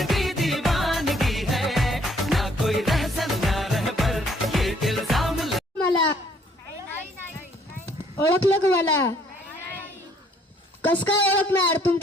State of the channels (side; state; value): both; normal; correlation 0.63